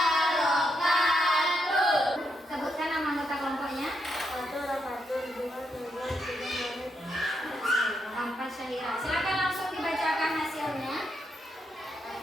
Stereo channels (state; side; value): normal; both; correlation 0.81